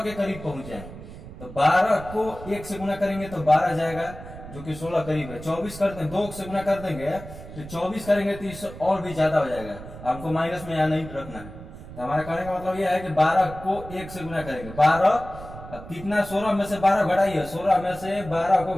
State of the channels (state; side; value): noise; right; rumble, 14 dB below the sound